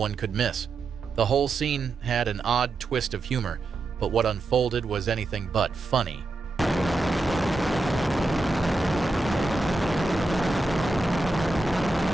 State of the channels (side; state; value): left; quieter; 3.2 dB